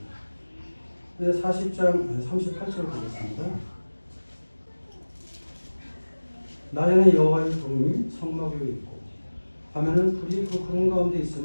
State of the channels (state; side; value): inverted; both; correlation -1.00